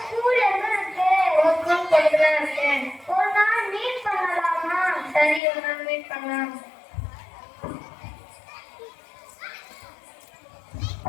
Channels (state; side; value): drops out; right; at 5.4 s